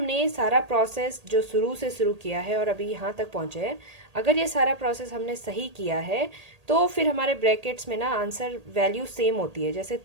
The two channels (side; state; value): left; late; 1.8 ms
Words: सारा प्रोसेस जो शुरू से शुरू किया है और अभी यहाँ तक पहुँचे हैं, अगर ये सारा प्रोसेस हमने सही किया है तो फिर हमारे ब्रैकेट्स में ना आंसर वैल्यू सेम होती है। जैसे